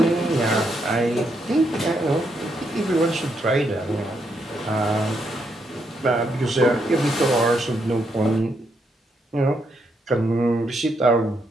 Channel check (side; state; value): both; normal; correlation 0.78